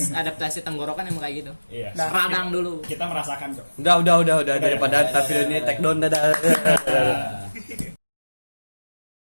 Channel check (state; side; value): inverted; both; correlation -1.00